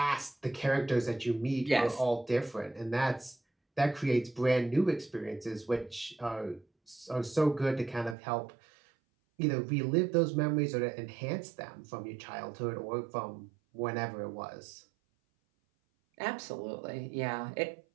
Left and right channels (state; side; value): drops out; left; at 8.2 s